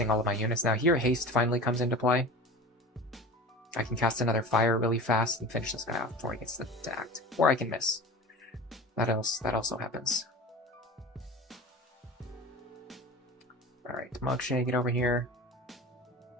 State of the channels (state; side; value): normal; both; correlation 0.34